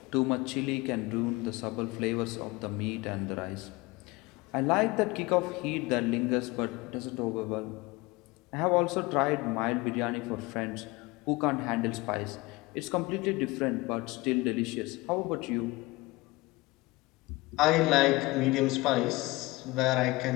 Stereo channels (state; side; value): quieter; right; 22.1 dB